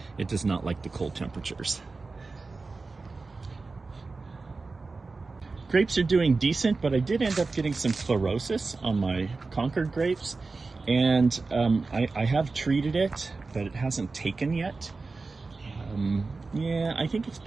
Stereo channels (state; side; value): quieter; left; 3.9 dB